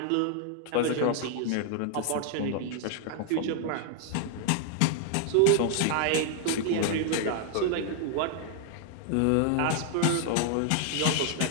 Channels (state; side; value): different; both; correlation 0.00